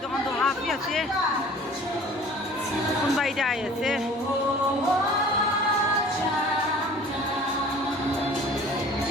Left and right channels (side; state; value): both; normal; correlation 0.47